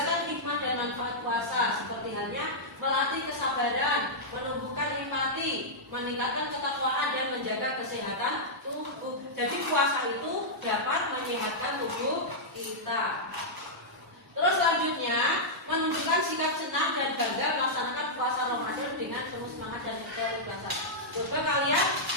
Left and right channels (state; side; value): normal; both; correlation -0.09